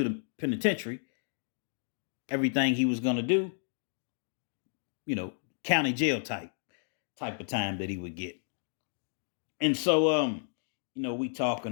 the penitentiary. Everything he was going to do, county jail type of time that he would get. And so, we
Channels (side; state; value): right; silent; digital silence